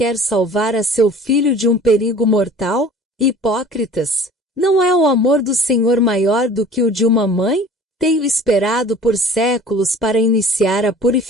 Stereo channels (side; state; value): both; normal; correlation 0.46